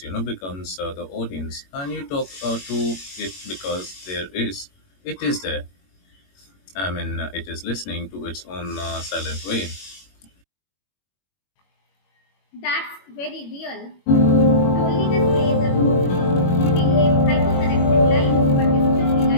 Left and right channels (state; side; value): late; right; 21 ms